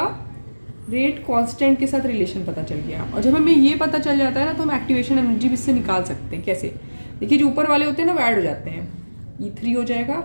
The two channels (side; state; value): both; inverted; correlation -1.00